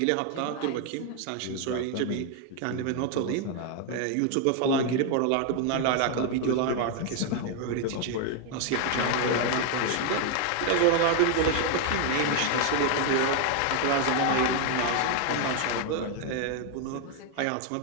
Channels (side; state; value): both; different; correlation 0.01